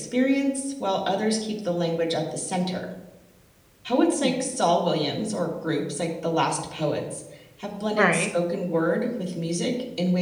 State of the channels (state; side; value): identical; both; correlation 1.00